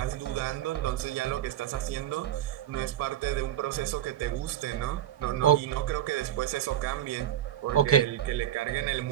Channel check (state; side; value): quieter; left; 11.6 dB